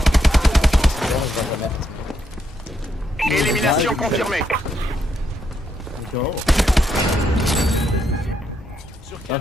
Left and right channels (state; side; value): normal; both; correlation 0.78